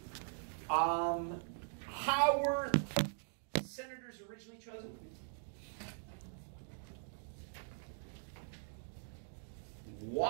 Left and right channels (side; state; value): left; silent; digital silence